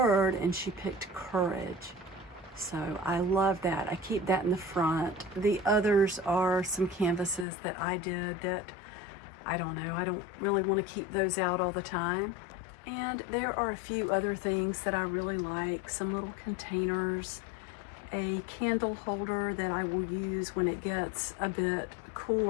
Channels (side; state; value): right; drops out; at 7.5 s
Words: and she picked courage. So I love that. I keep that in the front. The others are some canvases that I did that I don't know, I don't really want to keep those out all the time. And there are a few other things that I really like, some little containers, a candle holder that I will use when it gets a bit